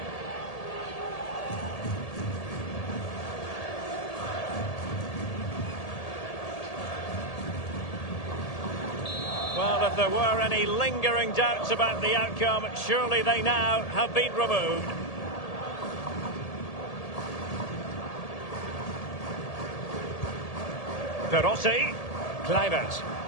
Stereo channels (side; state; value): right; late; 1.8 ms